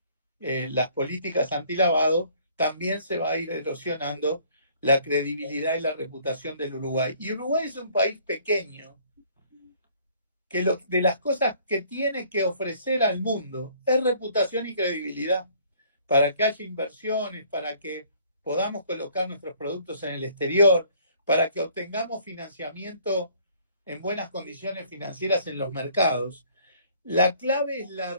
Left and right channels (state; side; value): inverted; both; correlation -0.58